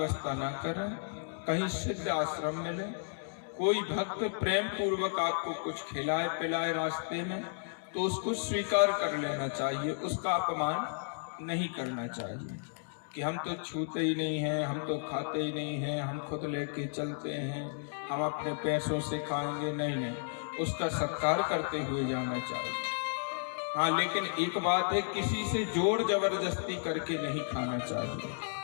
ना करें, कहीं सिद्ध आश्रम मिले, कोई भक्त प्रेम पूर्वक आपको कुछ खिलाए पिलाए रास्ते में, तो उसको स्वीकार कर लेना चाहिए, उसका अपमान नहीं करना चाहिए कि हम तो छूते ही नहीं हैं, हम तो खाते ही नहीं हैं, हम खुद लेके चलते हैं, हम अपने पैसों से खाएंगे। नहीं, उसका सत्कार करते हुए जाना चाहिए। हाँ, लेकिन एक बात है, किसी से जोर जबरदस्ती करके नहीं खाना चाहिए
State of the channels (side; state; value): right; silent; digital silence